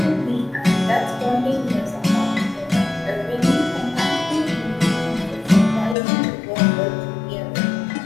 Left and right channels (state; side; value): drops out; right; at 6.0 s